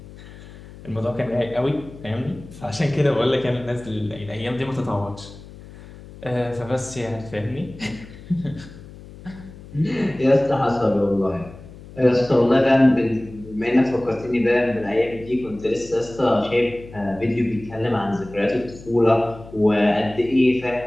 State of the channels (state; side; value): noise; left; hum, 18 dB below the sound